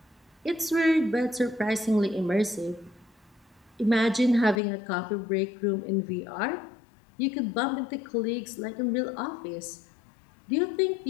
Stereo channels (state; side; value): drops out; right; at 4.6 s